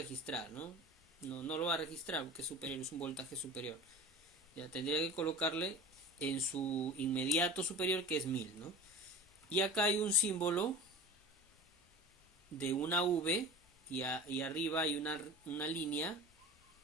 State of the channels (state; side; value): normal; both; correlation 0.36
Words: ¿no? No lo va a registrar porque es superior, es un voltaje superior. Ya tendría que colocarle en su inmediato superior, que es 1000, ¿no? Y acá hay un símbolo de una V y arriba hay una línea,